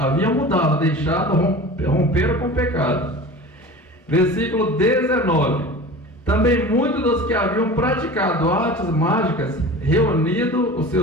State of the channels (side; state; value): both; normal; correlation 0.36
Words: mudado, deixado, romperam com o pecado. Versículo 19. Também muitos dos que haviam praticado artes mágicas, reunido os